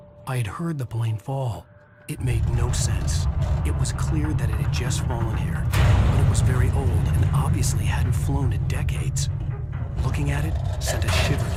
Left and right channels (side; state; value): both; identical; correlation 1.00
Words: I had heard the plane fall. It made no sense. It was clear that it had just fallen here, but it was very old and obviously hadn't flown in decades. Looking at it sent a shiver